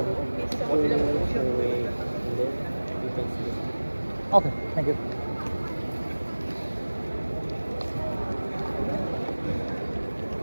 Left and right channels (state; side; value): inverted; both; correlation -1.00